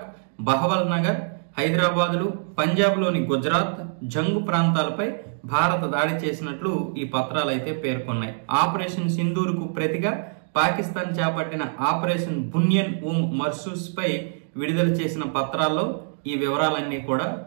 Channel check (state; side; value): silent; left; digital silence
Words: బహవల్ నగర్, హైదరాబాదులు, పంజాబ్లోని గుజరాత్, జంగు ప్రాంతాలపై భారత దాడి చేసినట్లు ఈ పత్రాలు అయితే పేర్కొన్నాయి. ఆపరేషన్ సింధూర్ కు ప్రతిగా పాకిస్తాన్ చేపట్టిన ఆపరేషన్ బునియన్ మర్సూస్ పై విడుదల చేసిన పత్రాల్లో ఈ వివరాలన్నీ కూడా